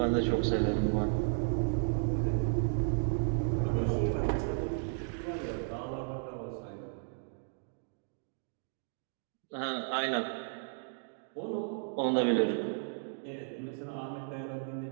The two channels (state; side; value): silent; left; digital silence